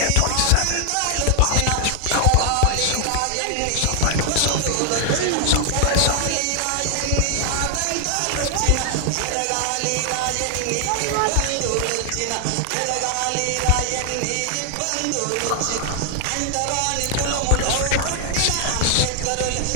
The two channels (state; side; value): different; both; correlation 0.00